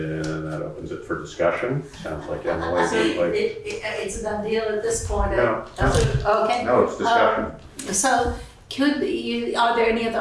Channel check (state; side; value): identical; both; correlation 1.00